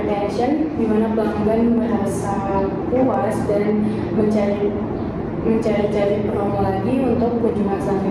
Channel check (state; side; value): identical; both; correlation 1.00